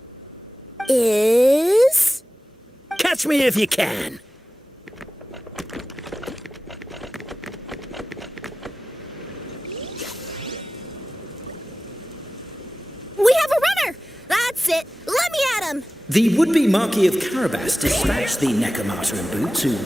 Catch me if you can! We have a runner! That's it! Let me at him! The would-be Marquis of Carabas dispatched the Necromancer in boots, who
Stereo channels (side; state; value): both; normal; correlation 0.96